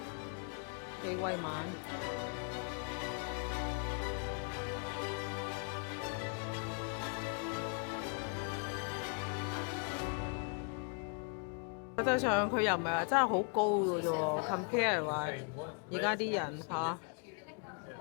幾威猛。實際上佢又唔係話真係好高嘅啫喎 ，compare 話而家啲人嚇，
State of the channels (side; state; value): right; quieter; 38.7 dB